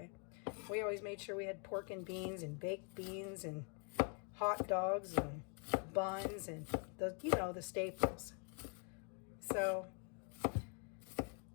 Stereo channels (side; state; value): right; quieter; 39.3 dB